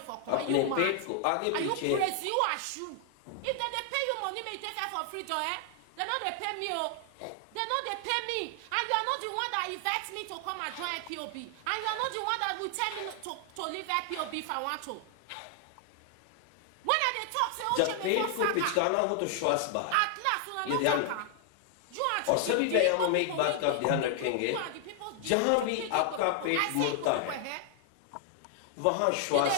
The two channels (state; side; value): different; both; correlation 0.00